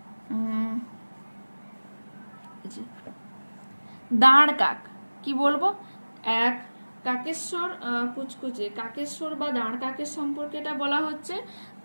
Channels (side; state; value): both; inverted; correlation -1.00